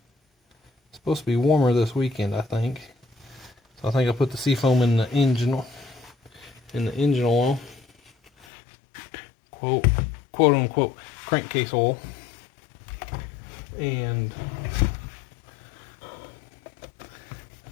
It's supposed to be warmer this weekend, I think. So I think I put the seafoam in the engine oil. Quote unquote crankcase oil. And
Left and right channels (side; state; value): right; drops out; at 8.5 s